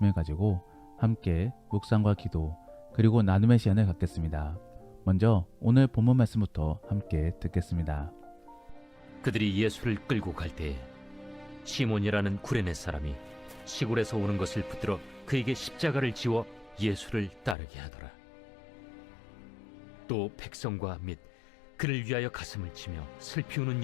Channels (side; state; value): right; drops out; at 17.6 s